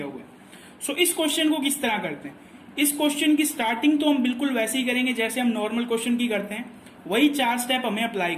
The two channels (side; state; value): both; identical; correlation 1.00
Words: हुआ है। सो इस क्वेश्चन को किस तरह करते हैं, इस क्वेश्चन की स्टार्टिंग तो हम बिल्कुल वैसे ही करेंगे जैसे हम नॉर्मल क्वेश्चन की करते हैं, वही 4 स्टेप हमें अप्लाई